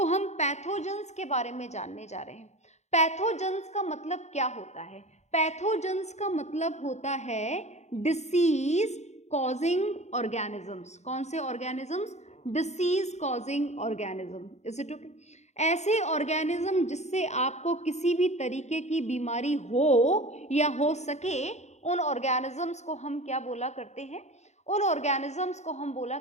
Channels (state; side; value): late; right; 0.33 ms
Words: हम पैथोजेंस के बारे में जानने जा रहे हैं। पैथोजेंस का मतलब क्या होता है? पैथोजेंस का मतलब होता है डिसीज कॉजिंग ऑर्गेनिजम्स। कौन से organisms? Disease causing organism. Is it okay? ऐसे ऑर्गेनिज्म जिससे आपको किसी भी तरीके की बीमारी हो या हो सके, उन ऑर्गेनिजम्स को हम क्या बोला करते हैं? उन ऑर्गेनिजम्स को हम बोला